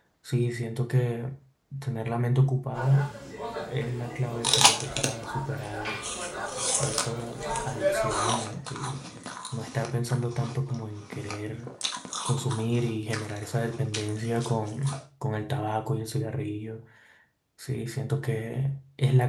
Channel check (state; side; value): identical; both; correlation 1.00